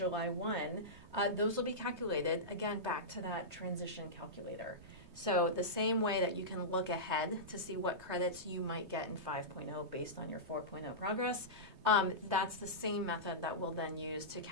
1, those will be calculated, again, back to that transition calculator. So the same way that you can look ahead to see what credits you might get in 5.0 based on your 4.0 progress, that's the same method that we'll then use to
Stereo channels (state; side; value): late; left; 3.2 ms